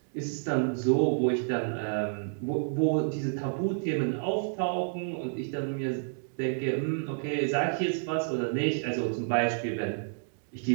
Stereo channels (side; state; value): left; silent; digital silence